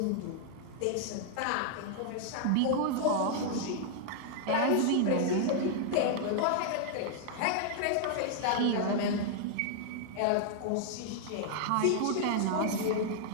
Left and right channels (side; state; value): both; different; correlation 0.00